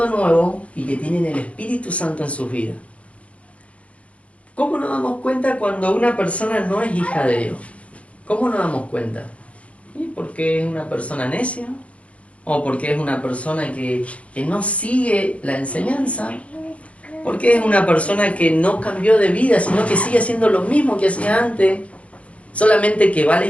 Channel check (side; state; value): right; late; 0.064 ms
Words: de nuevo y que tienen el Espíritu Santo en sus vidas. ¿Cómo nos damos cuenta cuando una persona no es hija de Dios? ¿Cómo nos damos cuenta? ¿Y porque es una persona necia? ¿O porque es una persona que no sigue la enseñanza? ¿Porque es una persona que no cambió de vida, sino que sigue haciendo lo mismo que hacía antes, solamente que va a la